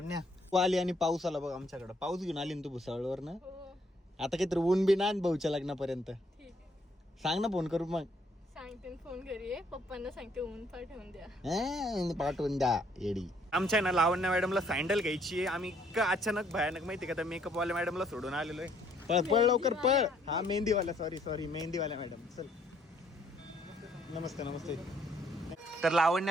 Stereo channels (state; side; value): normal; both; correlation 0.67